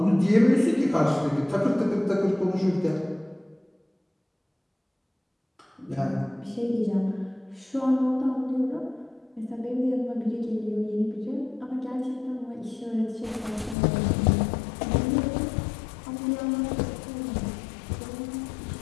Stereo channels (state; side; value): drops out; right; at 13.8 s